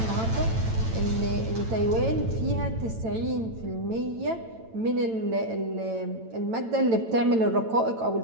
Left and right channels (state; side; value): late; left; 9.0 ms